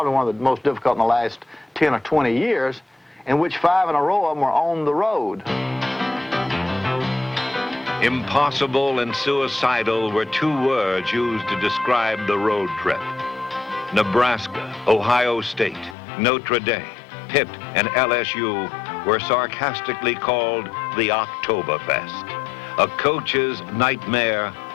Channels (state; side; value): drops out; right; at 16.0 s